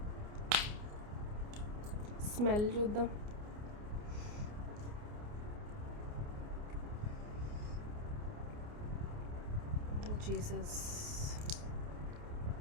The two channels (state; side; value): late; left; 29 ms